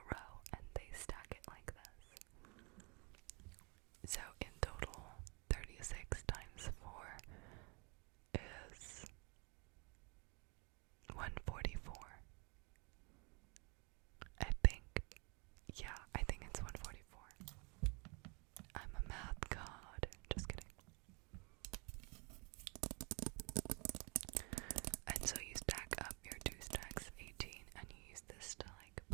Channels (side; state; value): left; quieter; 31.7 dB